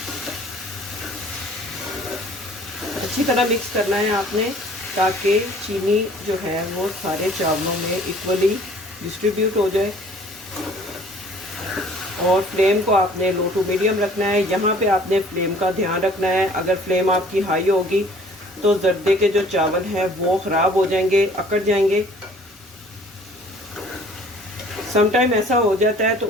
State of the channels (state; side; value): normal; both; correlation 0.53